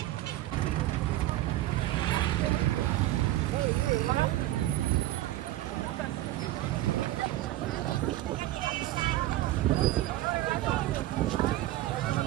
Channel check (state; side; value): quieter; left; 15.3 dB